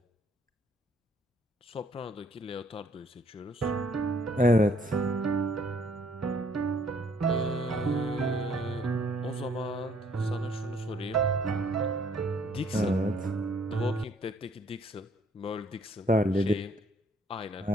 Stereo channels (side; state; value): both; normal; correlation 0.64